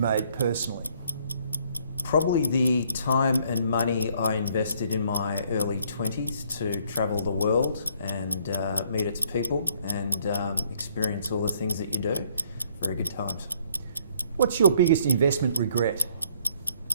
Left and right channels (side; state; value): both; inverted; correlation -0.64